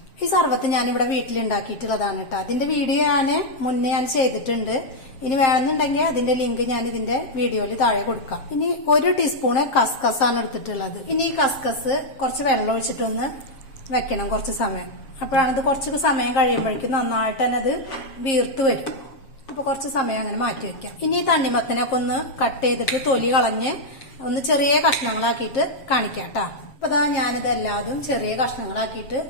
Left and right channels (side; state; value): right; late; 7.5 ms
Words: ഈ സർബത്ത് ഞാനിവിടെ വീട്ടിലുണ്ടാക്കിയിട്ടുള്ളതാണ് കേട്ടോ. അതിന്റെ വീഡിയോ മുന്നേ ഞാൻ ചെയ്തിട്ടുണ്ട്. ഇനി വേണമെന്നുണ്ടെങ്കിൽ അതിന്റെ ലിങ്ക് ഞാൻ ഇതിന്റെ വീഡിയോയിൽ താഴെ കൊടുക്കാം. ഇനി 1 ടീസ്പൂണ് കസ്കസ് ആണ് എടുത്തിട്ടുള്ളത്. ഇനി ഈ കസ്കസ് കുറച്ച് വെള്ളം ഒഴിച്ചിട്ടൊന്ന് വെക്കണം കുറച്ച് സമയം. അപ്പോഴാണ് ഇത് കുറച്ച് സമയം കഴിയുമ്പോഴേക്കും നന്നായിട്ട് തന്നെ അത് വീർത്ത് വരും. അപ്പൊ കുറച്ച് സമയം അങ്ങനെ മാറ്റി വെക്കാം. ഇനി ഈ തണ്ണിമത്തനൊക്കെ ഒന്ന് കട്ട് ചെയ്തിട്ട് തൊലി കളഞ്ഞ് ഒന്ന് ചെറിയ കഷ്ണങ്ങളാക്കിയിട്ട് കാണിക്കാം കേട്ടോ. അപ്പൊ അതാ ഞാനിതെല്ലാതും ചെറിയ കഷ്ണങ്ങളാക്കിയിട്ട്